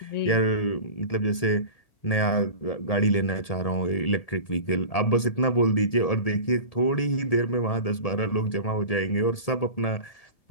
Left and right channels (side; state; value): right; late; 1.8 ms